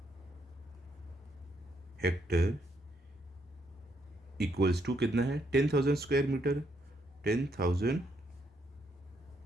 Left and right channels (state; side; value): normal; both; correlation 0.75